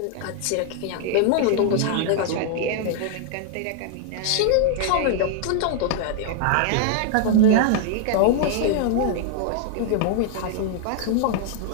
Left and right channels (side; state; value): both; different; correlation 0.00